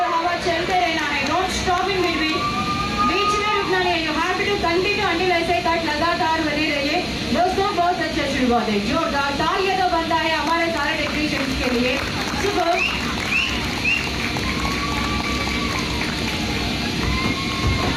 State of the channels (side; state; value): both; identical; correlation 1.00